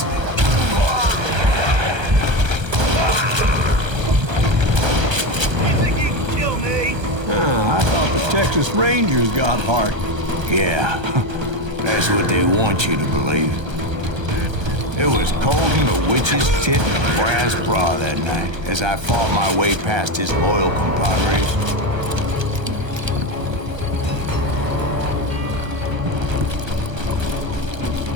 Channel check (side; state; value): left; late; 1.3 ms